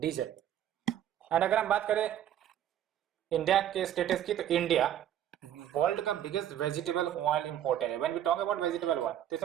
और अगर हम बात करें इंडिया के स्टेटस की, तो इंडिया वर्ल्ड का बिगेस्ट वेजिटेबल ऑयल इंपोर्टर है। When we talk about vegetable oil, तो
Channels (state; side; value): quieter; left; 11.0 dB